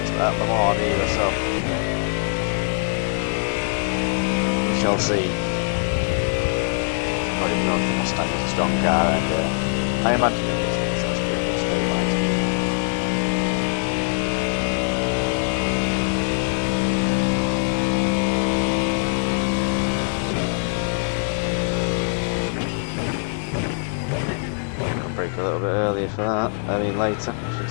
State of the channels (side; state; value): right; silent; 59 dB below the other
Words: at Lemans either, so we shall see. I don't even know if the Mustang is a strong car, and I imagine it is, because that's pretty much straight line speed. A little bit earlier for that, I mean later, I should